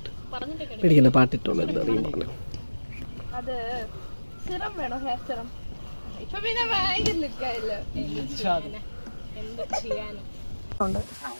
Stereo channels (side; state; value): both; inverted; correlation -1.00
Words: പേടിക്കണ്ട പാട്ടിട്ടോളൂ എന്താണെങ്കിലും പറഞ്ഞു. അത് സിറം വേണോ? ഹെയർ സിറം ഇപ്പൊ പിന്നെ ഭയങ്കര ലുക്കായില്ലോ. എന്ത് ചെയ്യാനും